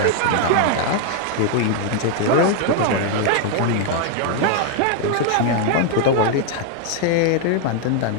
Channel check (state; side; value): different; both; correlation 0.00